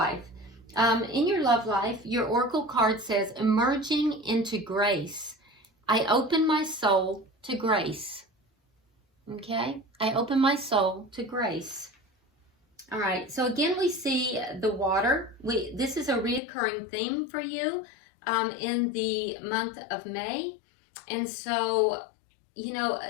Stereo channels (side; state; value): right; drops out; at 16.4 s